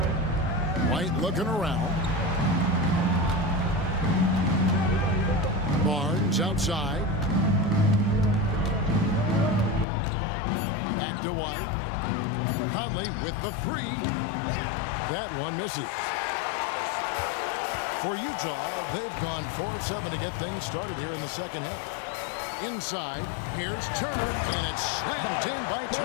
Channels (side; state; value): right; drops out; at 9.9 s